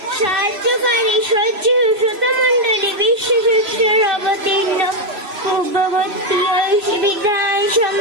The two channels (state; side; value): late; left; 3.0 ms